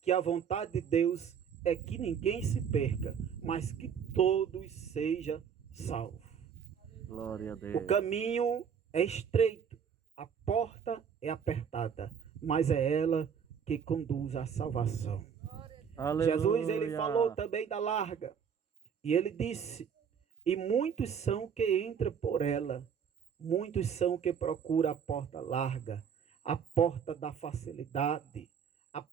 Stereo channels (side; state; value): left; quieter; 7.4 dB